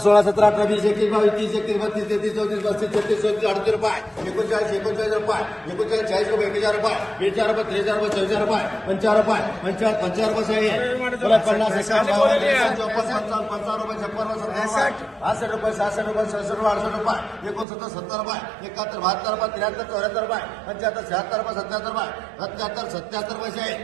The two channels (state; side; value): drops out; left; at 17.7 s